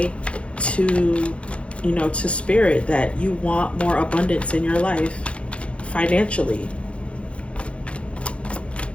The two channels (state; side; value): late; right; 0.060 ms